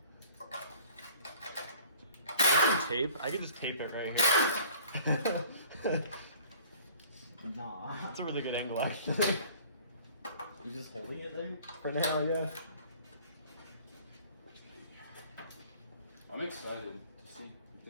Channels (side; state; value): both; inverted; correlation -0.50